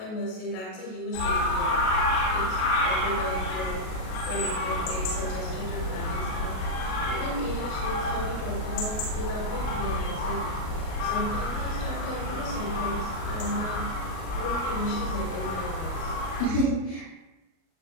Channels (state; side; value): late; right; 37 ms